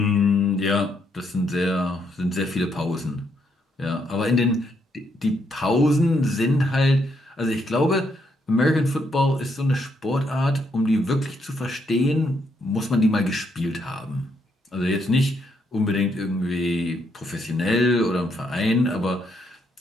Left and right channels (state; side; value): normal; both; correlation 0.75